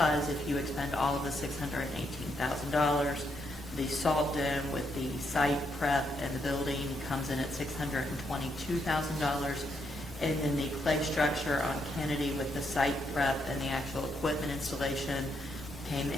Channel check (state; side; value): normal; both; correlation 0.78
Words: if you expend all of the $618,000, the salt dome with the site prep and the building comes in at $622,000, and then the clay structure on Kennedy with the site prep and the actual equipment installation came